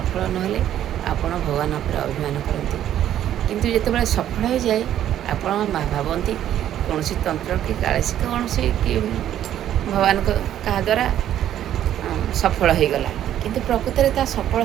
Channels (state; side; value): quieter; left; 11.3 dB